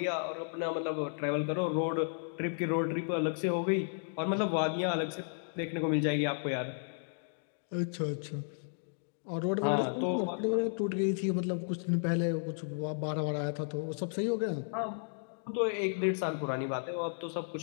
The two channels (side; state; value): right; silent; digital silence